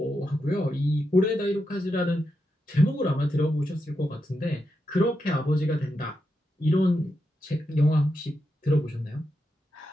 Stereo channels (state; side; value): normal; both; correlation 0.86